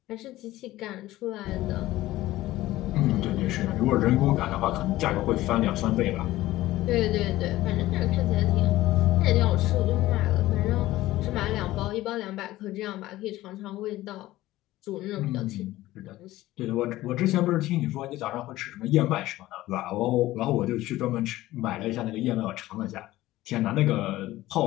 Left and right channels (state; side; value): quieter; right; 16.4 dB